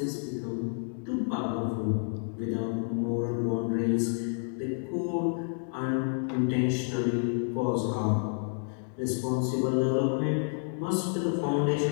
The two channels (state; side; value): silent; right; 58 dB below the other